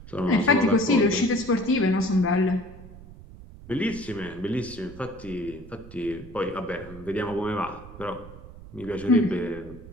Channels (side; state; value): right; noise; rumble, 17 dB below the sound